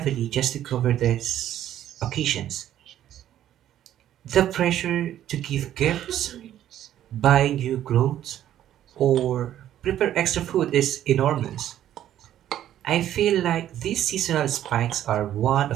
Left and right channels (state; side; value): quieter; left; 11.7 dB